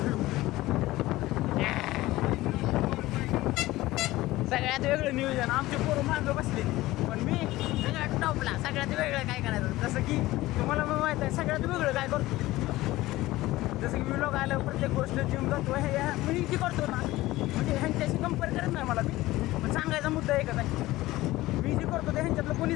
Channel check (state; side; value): quieter; right; 17.7 dB